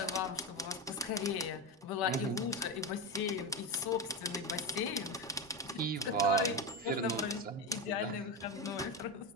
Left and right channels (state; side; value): normal; both; correlation 0.16